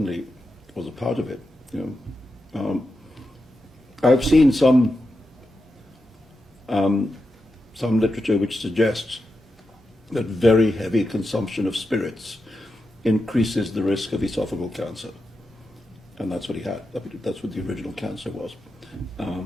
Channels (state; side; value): normal; both; correlation 0.88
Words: was a part of it. You know, I've seen some literature which suggests that very heavy consumption of spirits increases the risk of esophageal cancer. And that's what he had. That's what the original cancer was.